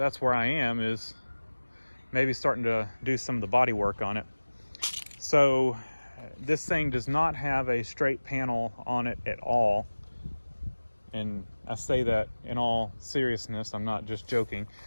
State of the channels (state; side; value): inverted; both; correlation -1.00